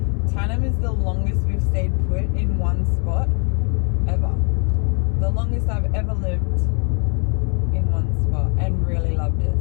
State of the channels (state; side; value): quieter; right; 38.8 dB